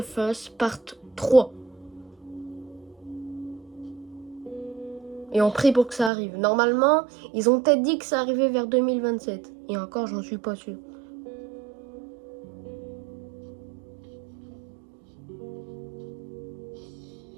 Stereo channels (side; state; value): left; drops out; at 6.1 s